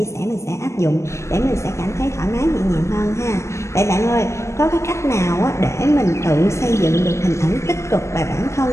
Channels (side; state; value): right; late; 0.14 ms